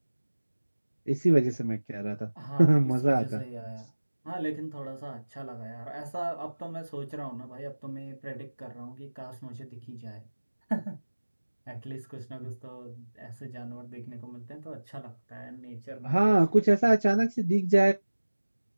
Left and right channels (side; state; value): both; inverted; correlation -1.00